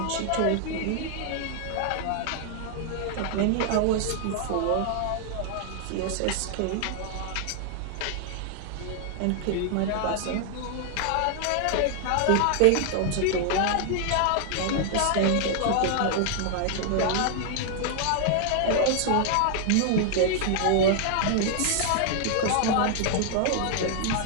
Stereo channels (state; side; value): different; both; correlation 0.00